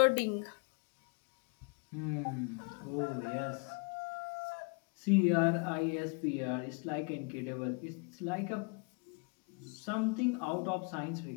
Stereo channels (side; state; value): right; quieter; 34.0 dB